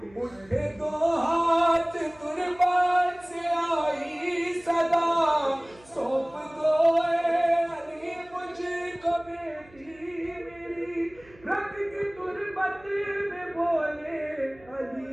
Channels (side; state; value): right; noise; hum, 26 dB below the sound